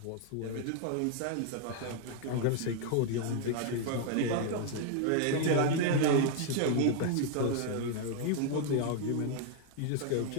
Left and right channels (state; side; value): different; both; correlation 0.00